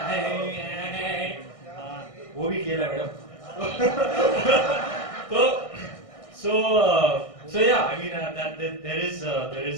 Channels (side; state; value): right; late; 1.6 ms